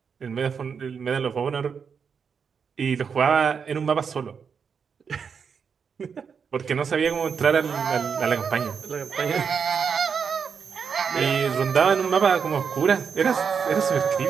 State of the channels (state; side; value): quieter; left; 6.4 dB